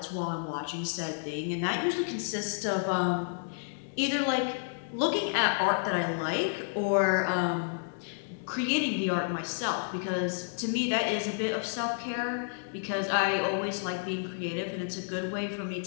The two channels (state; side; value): silent; right; digital silence